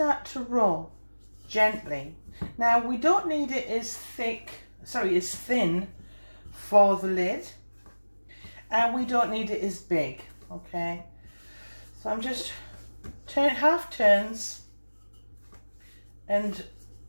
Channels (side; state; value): both; inverted; correlation -1.00